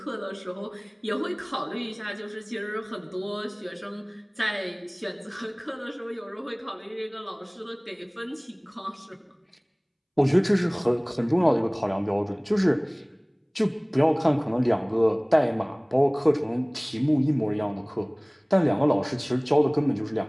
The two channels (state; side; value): identical; both; correlation 1.00